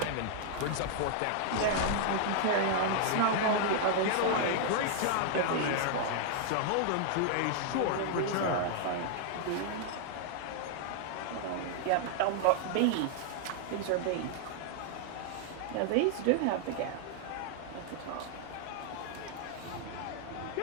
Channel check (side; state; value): both; different; correlation 0.00